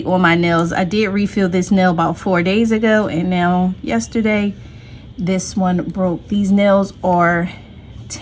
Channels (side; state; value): both; identical; correlation 1.00